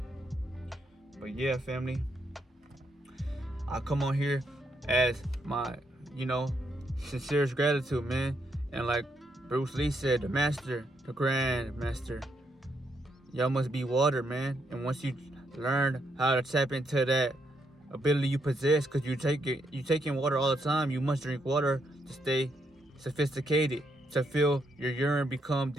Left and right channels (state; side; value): normal; both; correlation 0.77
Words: But yeah, family, I come on here as my, you know, sincerest gratitude, man. And like Bruce Lee said, the master, the grand master, y'all must be water, man. And once you learn how to tap into that ability you possess, because you take in water all the time, you must drink water to stay sophisticated, to feel your urine become